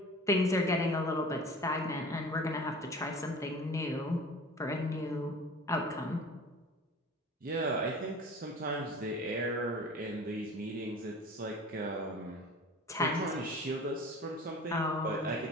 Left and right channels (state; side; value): normal; both; correlation 0.41